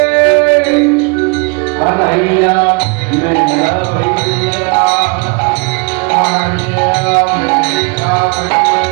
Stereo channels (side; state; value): left; quieter; 32.0 dB